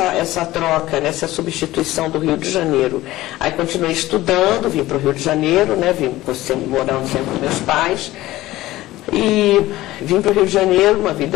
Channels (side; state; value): right; quieter; 16.8 dB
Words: troca, né, essa substituição do Rio de Janeiro. Aí continuei estudando, vim para o Rio de Janeiro, né, morando sempre com meus pais, e vim para o Rio de Janeiro, uma